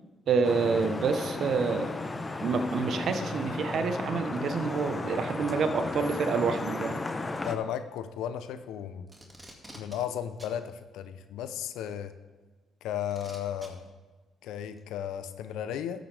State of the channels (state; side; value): normal; both; correlation 0.69